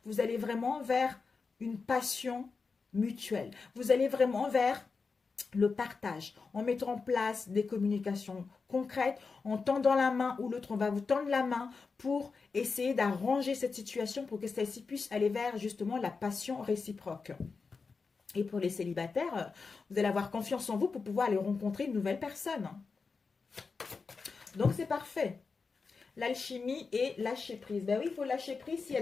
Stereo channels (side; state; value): right; quieter; 4.7 dB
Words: vous allez vraiment vers une passion mutuelle. Vous allez vraiment vers le partage, en mettant en place des communications concrètes, en tendant la main ou l'autre, on va vous tendre la main pour essayer d'arranger cette situation pour que celle-ci puisse aller vers justement la passion réciproque. Et pour les célibataires, vous allez avoir confiance en vous pour pouvoir aller rencontrer une nouvelle personne. Donc c'est parfait. L'alchimie et lâcher prise. Ben oui, il faut lâcher prise s'il y